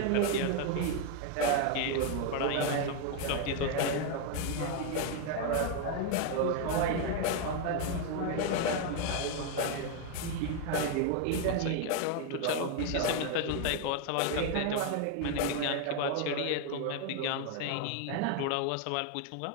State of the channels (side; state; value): both; different; correlation 0.01